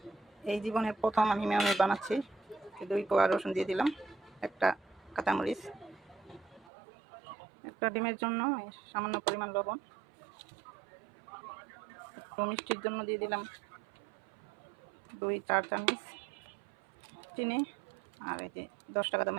এই জীবনের প্রথম আমি মেয়োনিজ বানাচ্ছি। 2 কোয়া রসুন দিয়ে দিলাম, একটা কাঁচামরিচ, একটা ডিমের জন্য সামান্য পরিমাণ লবণ, একটু মিষ্টির জন্য দিয়ে দিলাম 2-4 চামচ চিনি, আর এই যে 10 টাকা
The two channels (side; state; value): left; drops out; at 6.7 s